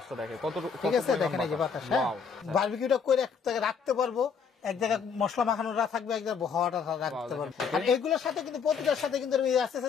দেখে কত, ঠিক আছে, দেখেন এই যে বাতাস, বারবিকিউটা করে এক জায়গায় রাখতে পারবো, এক জায়গায় মশলা মাখানোটা থাকবে, এক জায়গায় হাওয়াটা রাখতে পারবো। আর এগুলোর সাথে কিন্তু প্রতিটার সাথে কিন্তু আস্তে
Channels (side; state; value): right; quieter; 6.2 dB